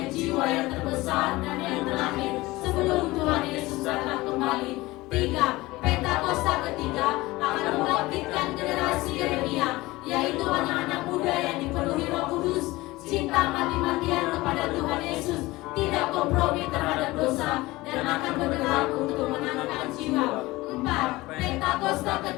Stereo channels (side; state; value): right; quieter; 20.0 dB